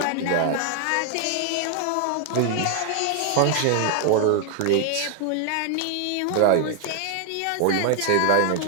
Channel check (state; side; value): different; both; correlation 0.00